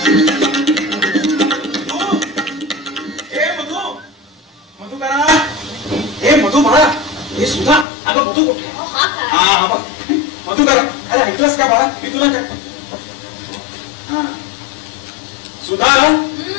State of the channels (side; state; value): right; drops out; at 7.9 s